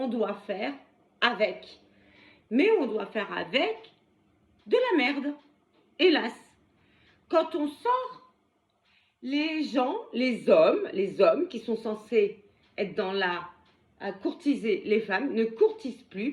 doit faire avec. Mais on doit faire avec de la merde. Hélas. Quand on sort, les gens, les hommes qui sont censés être dans à courtiser les femmes, ne courtisent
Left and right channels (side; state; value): both; identical; correlation 1.00